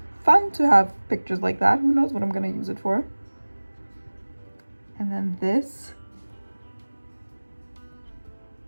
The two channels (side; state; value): both; inverted; correlation -1.00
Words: fun to have pictures like that. Who knows what I'm gonna use it for? And then this.